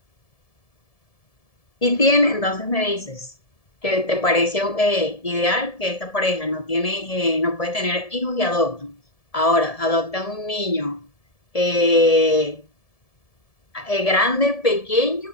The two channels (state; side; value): late; right; 1.7 ms